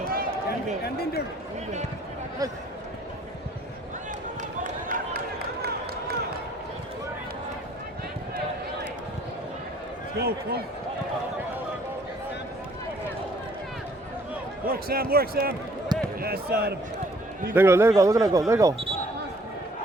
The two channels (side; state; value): both; normal; correlation 0.59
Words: Let's go, come on. Work, Sam, work, Sam. Yes, Adam. Let it go, let it go, look at it go, let it go.